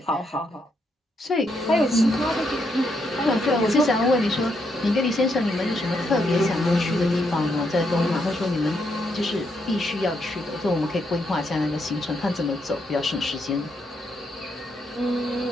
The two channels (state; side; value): normal; both; correlation 0.78